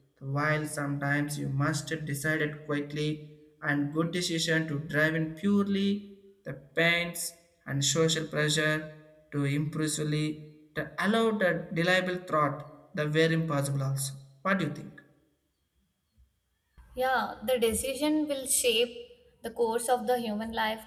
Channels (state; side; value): identical; both; correlation 1.00